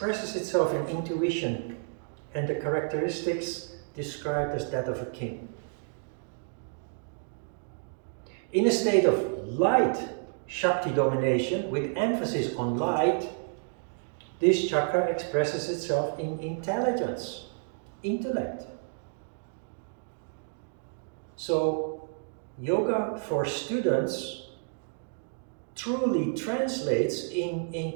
itself in intuition and the characteristics described as that of a king. In a state of light Shakti domination, with emphasis on light, This chakra expresses itself in intelligence, intellect. So, yoga for students truly translates in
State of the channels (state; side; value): silent; left; 58 dB below the other